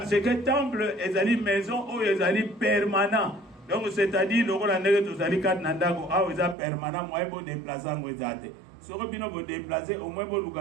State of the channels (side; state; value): left; drops out; at 6.6 s